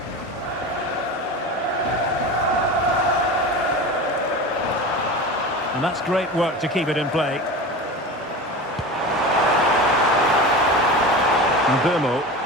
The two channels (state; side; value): normal; both; correlation 0.30